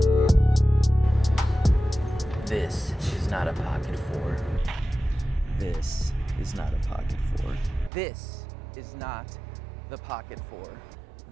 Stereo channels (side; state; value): left; drops out; at 7.9 s